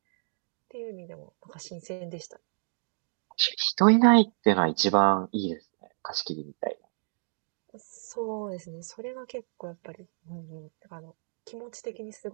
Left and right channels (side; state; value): left; silent; digital silence